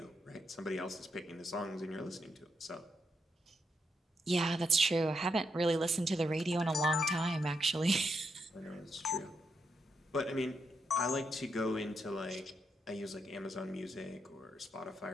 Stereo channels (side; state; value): both; normal; correlation 0.81